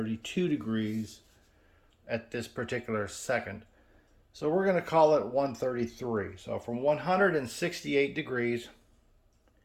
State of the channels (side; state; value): both; identical; correlation 1.00